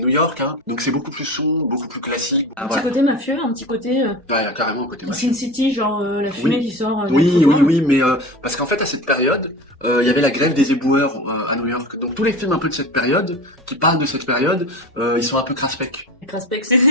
York, hein. Donc c'est beaucoup plus sombre, beaucoup plus classique. Un petit côté mafieux, un petit côté Ouais, il y a carrément un côté mafieux. Sin City, genre la fumée qui sort. Oui, mais parce qu'en fait à cette période, il y avait la grève des éboueurs à New York. Donc tous les films un peu de cette période, qui parlent de cette période, ils sont un peu craspec. Craspec, c'est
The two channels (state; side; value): normal; both; correlation 0.32